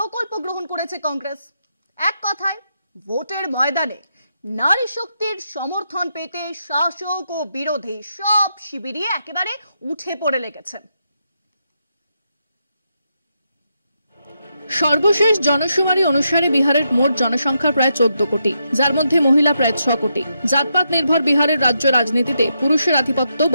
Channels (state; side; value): inverted; both; correlation -0.82